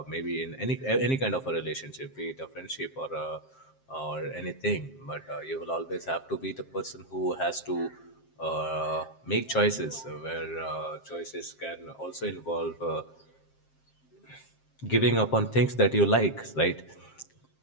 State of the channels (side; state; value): right; late; 7.6 ms